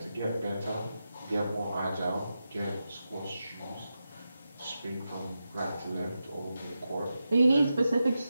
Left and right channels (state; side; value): inverted; both; correlation -0.90